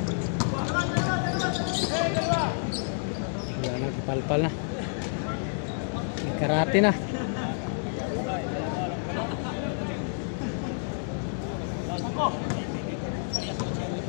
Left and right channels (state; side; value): silent; right; digital silence